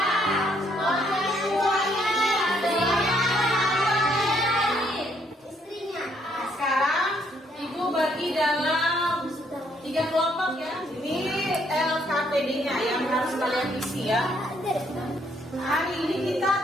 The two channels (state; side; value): normal; both; correlation 0.70